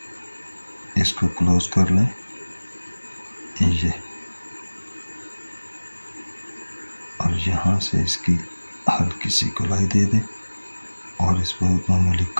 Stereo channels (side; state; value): both; inverted; correlation -1.00